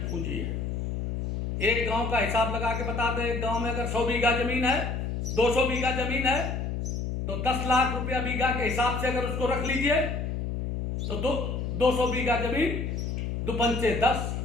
पूंजी है। एक गांव का हिसाब लगा के बता दें, एक गांव में अगर 100 बीघा जमीन है, 200 बीघा जमीन है, तो 10 लाख रुपया बीघा के हिसाब से अगर उसको रख लीजिए, तो 200 बीघा जमीन 2 पंचे 10,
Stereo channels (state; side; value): noise; left; hum, 3 dB below the sound